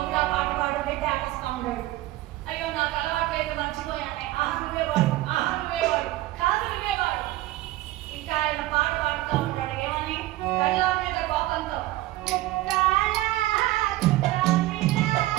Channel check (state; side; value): quieter; left; 16.9 dB